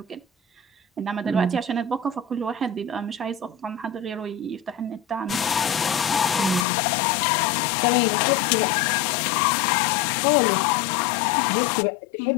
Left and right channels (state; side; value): drops out; right; at 6.7 s